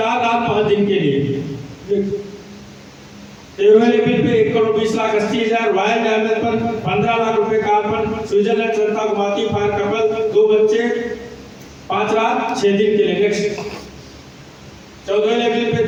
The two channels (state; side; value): identical; both; correlation 1.00